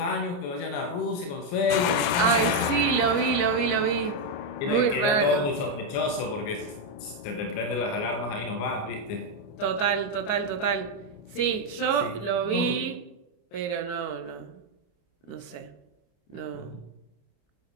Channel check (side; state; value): right; late; 29 ms